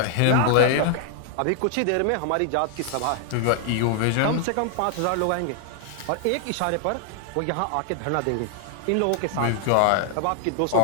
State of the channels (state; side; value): different; both; correlation 0.00